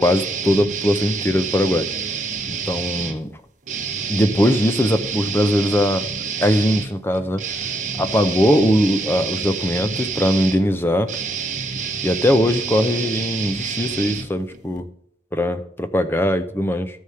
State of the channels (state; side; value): normal; both; correlation 0.76